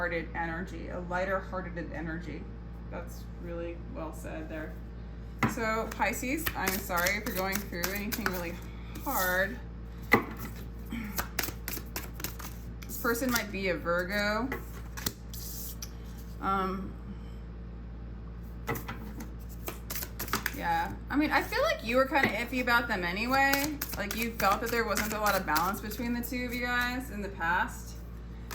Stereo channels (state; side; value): identical; both; correlation 1.00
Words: energy, a lighter-hearted energy. That's really well said there. So Pisces, I'm sorry if you're going through anything really hard. This person might be a Virgo. Yeah, I mean, I feel like you were kind of iffy about them anyway. Like, you felt that there wasn't a lot of balance between the two of you guys in the past.